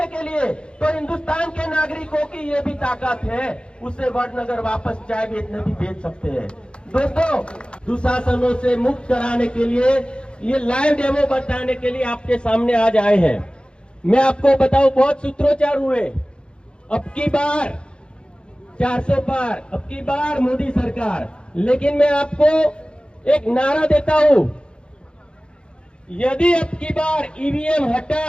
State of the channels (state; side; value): late; right; 0.054 ms